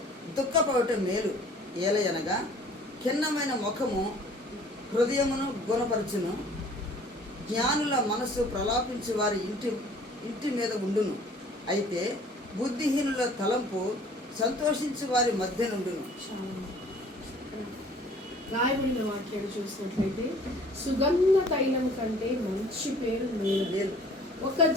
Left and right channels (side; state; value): both; normal; correlation 0.52